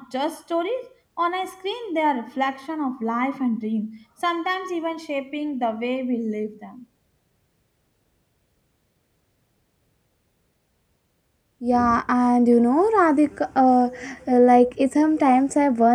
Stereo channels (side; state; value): both; identical; correlation 1.00